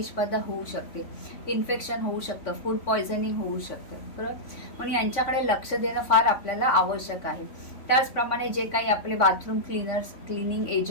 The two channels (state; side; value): late; right; 3.6 ms